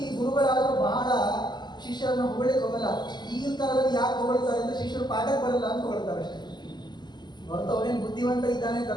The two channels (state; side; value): late; right; 0.21 ms